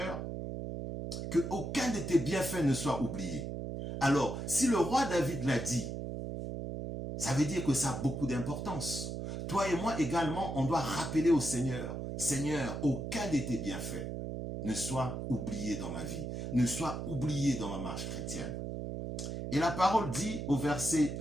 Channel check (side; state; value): right; noise; hum, 5 dB below the sound